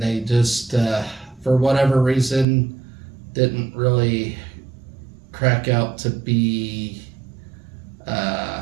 they just, for whatever reason, didn't really crack out to be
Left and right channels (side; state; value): left; drops out; at 2.5 s